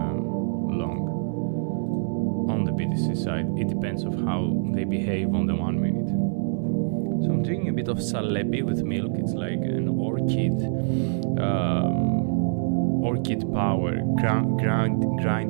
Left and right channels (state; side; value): silent; left; 62 dB below the other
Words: long on the BTC side. It depends of how they behave on the 1 minute. So I'm doing a bit of Salepi with milk. It's like an orchid power,